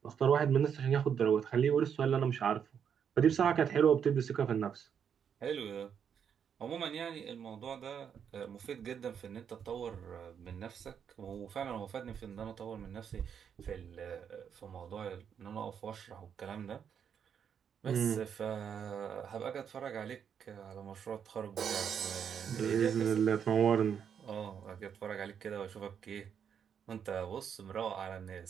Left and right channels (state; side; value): quieter; left; 7.8 dB